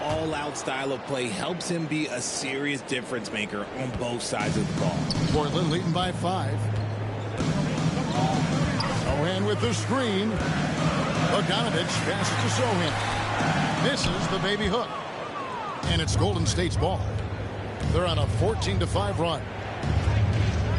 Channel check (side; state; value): both; identical; correlation 1.00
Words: all-out style of play helps him be a serious difference maker on both sides of the ball. Portland leading by 5. Sohan with the screen. Bogdanovich passes to Sohan. Misses the baby hook. And it's Golden State's ball. They're on a 14-5 run.